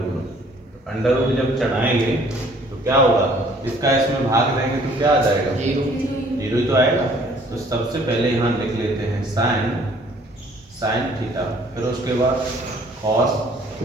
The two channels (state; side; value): normal; both; correlation 0.58